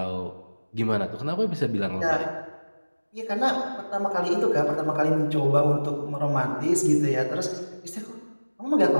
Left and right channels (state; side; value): inverted; both; correlation -1.00